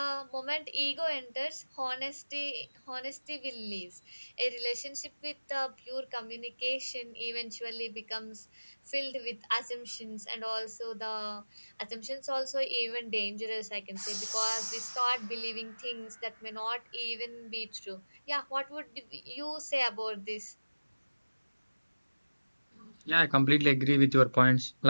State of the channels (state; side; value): inverted; both; correlation -1.00